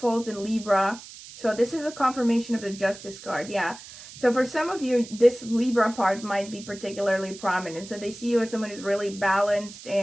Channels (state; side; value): noise; right; hiss, 16 dB below the sound